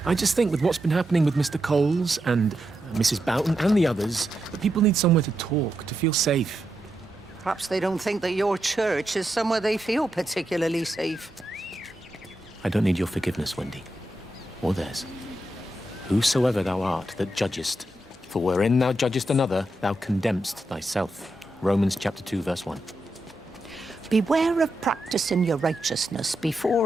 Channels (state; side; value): normal; both; correlation 0.85